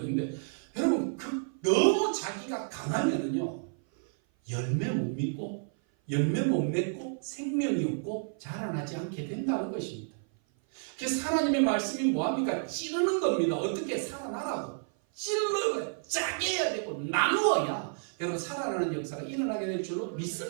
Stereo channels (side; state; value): left; silent; 55 dB below the other